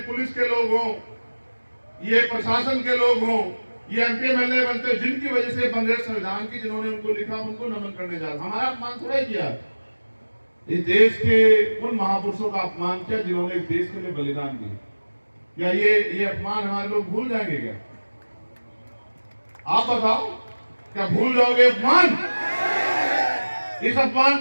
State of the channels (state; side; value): inverted; both; correlation -1.00